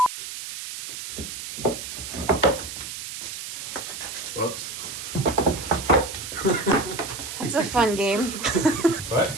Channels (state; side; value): noise; right; hiss, 8 dB below the sound